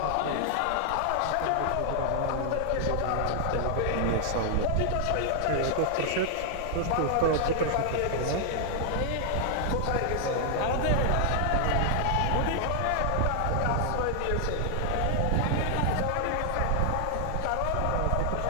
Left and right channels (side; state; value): both; different; correlation 0.00